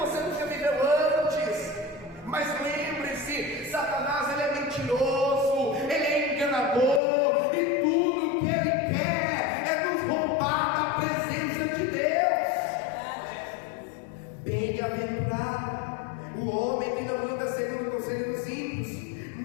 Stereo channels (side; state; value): right; drops out; at 7.0 s